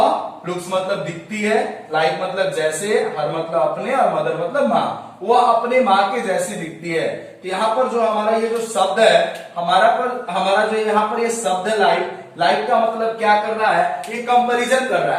लुक्स मतलब दिखती है, लाइक मतलब जैसे, हर मतलब अपने, और मदर मतलब माँ, वह अपने माँ के जैसी दिखती है। तो यहाँ पर जो हमारा ये जो शब्द है, हमारा जो यहाँ पर ये शब्द है लाइक का मतलब क्या कर रहा है? ये कंपैरिजन कर रहा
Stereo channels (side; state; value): both; identical; correlation 1.00